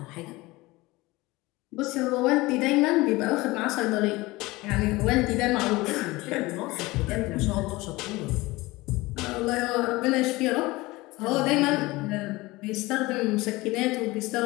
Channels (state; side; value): quieter; right; 21.0 dB